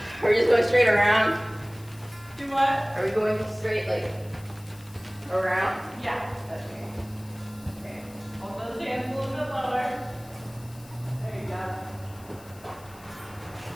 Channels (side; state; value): left; noise; hiss, 23 dB below the sound